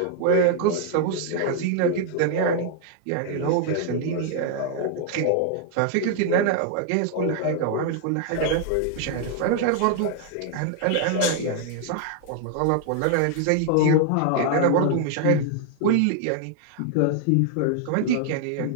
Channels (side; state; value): both; different; correlation 0.00